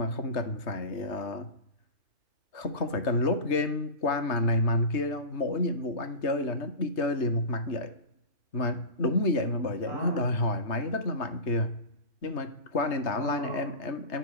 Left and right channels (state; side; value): late; right; 3.2 ms